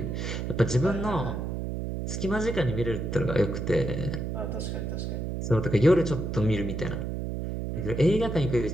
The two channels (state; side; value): noise; right; hum, 3 dB below the sound